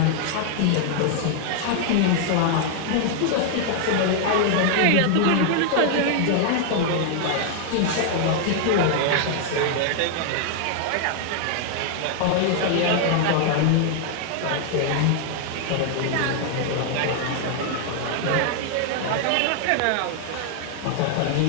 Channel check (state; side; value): different; both; correlation 0.00